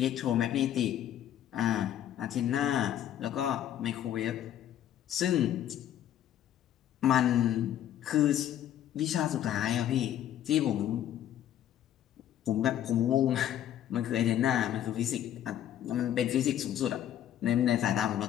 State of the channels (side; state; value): right; quieter; 11.2 dB